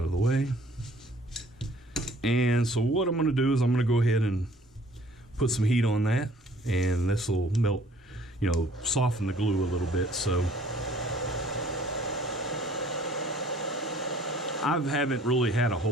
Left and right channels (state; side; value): normal; both; correlation 0.56